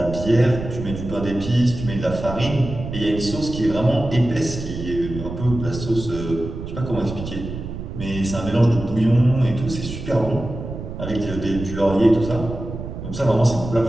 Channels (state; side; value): noise; right; rumble, 8 dB below the sound